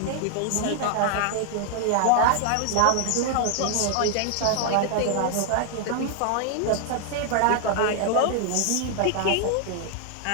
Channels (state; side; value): different; both; correlation 0.00